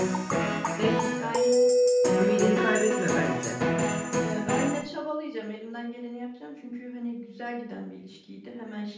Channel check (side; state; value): both; identical; correlation 1.00